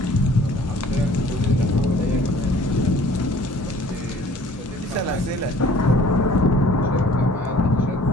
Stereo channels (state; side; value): normal; both; correlation 0.53